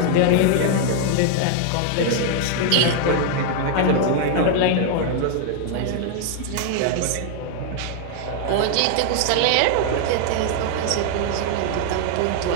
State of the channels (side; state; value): both; different; correlation 0.00